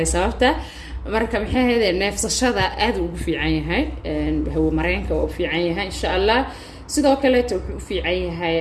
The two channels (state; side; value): identical; both; correlation 1.00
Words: sababta marka maxay ahayd neefsashada aad ugu fiican yahay hawo mareenka oo u fiican yahay insha Allah sidoo kale wuxuu u fiican yahay